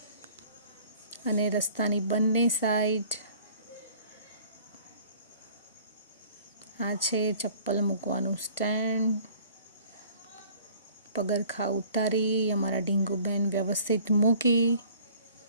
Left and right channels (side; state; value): both; inverted; correlation -0.52